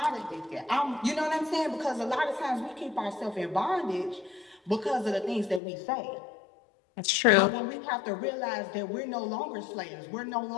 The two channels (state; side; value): drops out; right; at 5.6 s